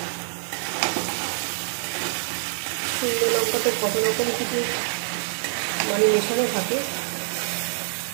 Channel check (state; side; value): silent; left; 61 dB below the other